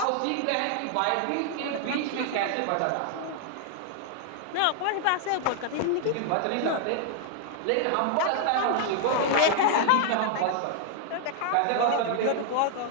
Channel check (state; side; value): different; both; correlation 0.00